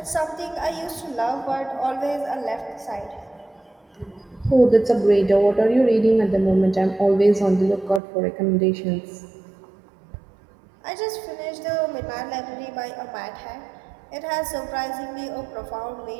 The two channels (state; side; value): drops out; left; at 8.0 s